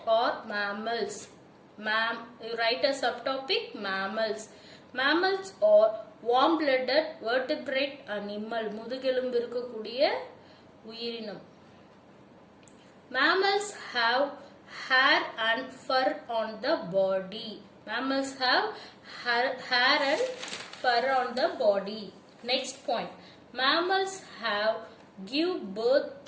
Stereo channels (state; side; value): identical; both; correlation 1.00